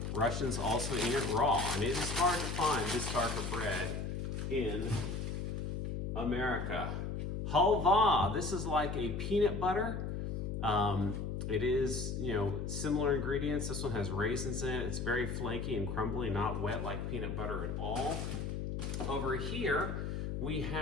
Russians also eat it raw, and it is hard to find this darker bread in America. Halva, this is like a peanut butter. It is, similar ingredients. This one has raisins in it. It's very flaky and crumbly, not wet like peanut butter at all. Over here, we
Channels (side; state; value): left; noise; hum, 3 dB below the sound